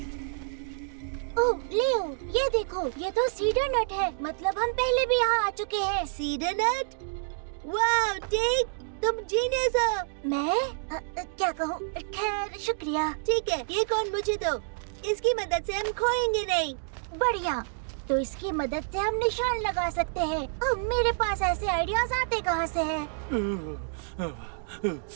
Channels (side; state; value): left; silent; digital silence